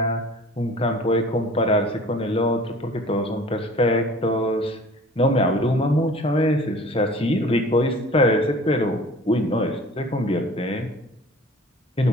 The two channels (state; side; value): normal; both; correlation 0.46